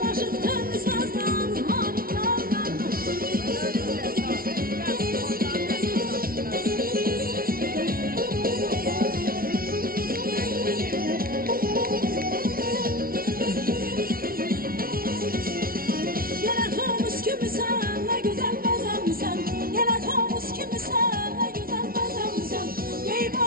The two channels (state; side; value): late; left; 0.43 ms